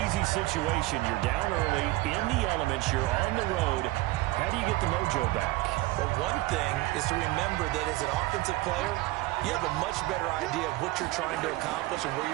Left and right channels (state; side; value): quieter; left; 19.1 dB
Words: easy situation. You're down early, in the elements, you're on the road. How do you get the mojo back? Well, one thing is to remember that as an offensive player, you have a much better idea of what you're trying to accomplish and where